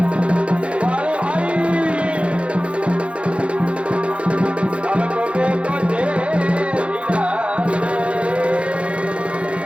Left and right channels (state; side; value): late; left; 0.060 ms